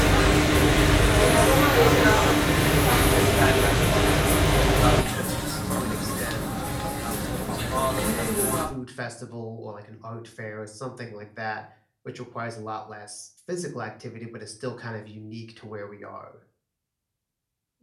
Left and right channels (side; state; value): both; identical; correlation 1.00